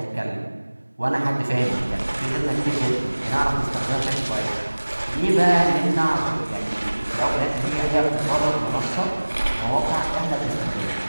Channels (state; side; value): inverted; both; correlation -1.00